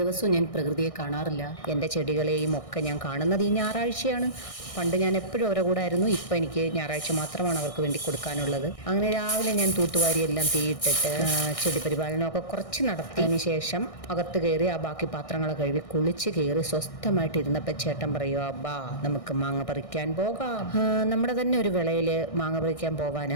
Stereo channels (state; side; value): late; right; 1.6 ms